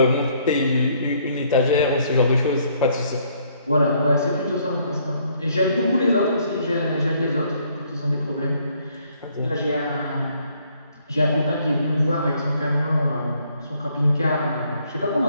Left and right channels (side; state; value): both; inverted; correlation -0.66